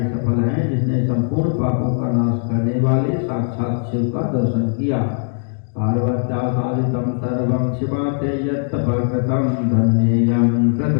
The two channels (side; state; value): right; silent; digital silence